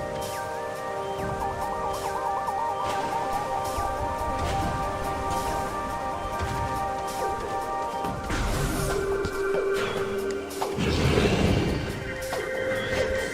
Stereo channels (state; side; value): identical; both; correlation 1.00